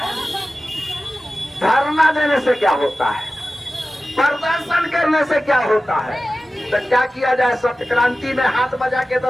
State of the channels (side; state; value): both; normal; correlation 0.95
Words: धरना देने से क्या होता है, प्रदर्शन करने से क्या होता है। तो क्या किया जाए, सत्य क्रांति में हाथ बजा के